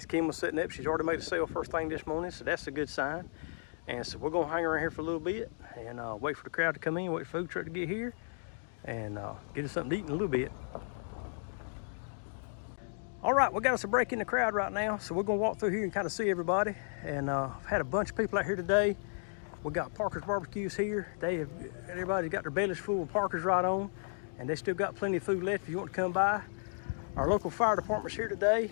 Kim was sitting up, she's already made a sale first thing this morning, so that's a good sign. And so we're gonna hang around here for a little bit and wait for the crowd to come in, wait for the food truck to get here, and get us something to eat in a little bit. All right, we got us a break in the crowd right now, so we're gonna walk through here and kind of see everybody. And I've had a bunch of people out here today. We got Parker's Barbecues here. Everybody's got their bellies full of Parker's right on, and they still got plenty of food left if you want to come by. Our local fire department's here today,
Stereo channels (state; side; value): silent; right; digital silence